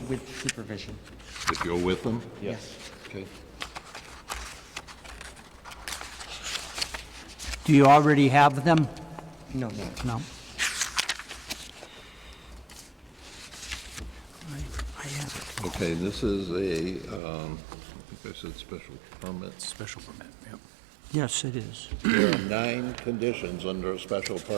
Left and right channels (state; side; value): drops out; left; at 17.2 s